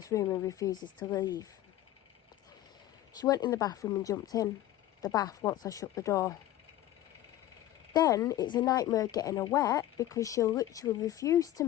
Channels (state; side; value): quieter; right; 13.9 dB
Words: room and refuses to leave. She went in the bathroom and jumped in the bath once I shut the door. Then it's a nightmare getting her wet because she'll literally refuse to